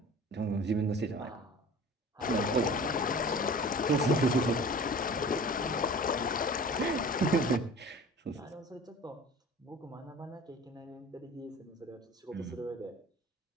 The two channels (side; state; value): both; normal; correlation 0.41